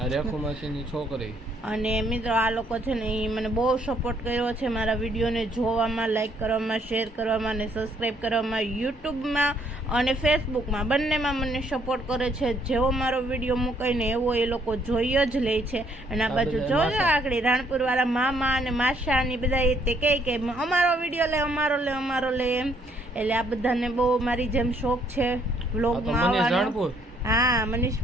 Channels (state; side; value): normal; both; correlation 0.67